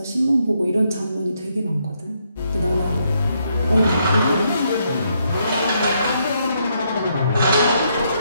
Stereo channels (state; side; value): inverted; both; correlation -0.76